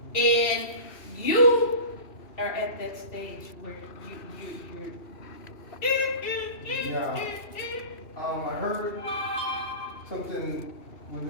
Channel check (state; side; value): late; right; 2.7 ms